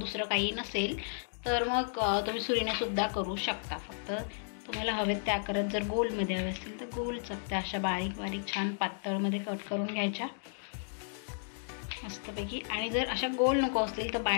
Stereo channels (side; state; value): right; silent; digital silence